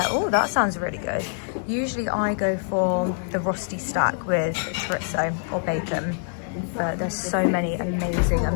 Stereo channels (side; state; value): right; silent; digital silence